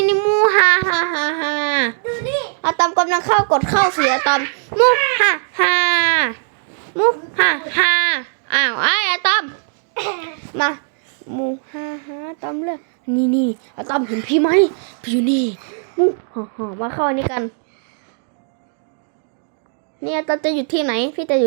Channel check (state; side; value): silent; left; digital silence